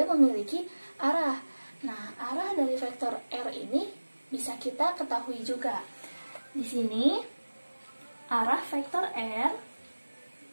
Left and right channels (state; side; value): inverted; both; correlation -1.00